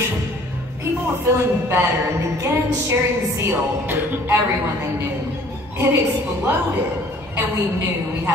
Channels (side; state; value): both; normal; correlation 0.54